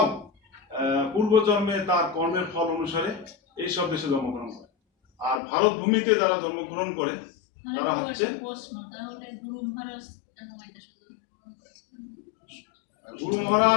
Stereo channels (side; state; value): right; drops out; at 5.4 s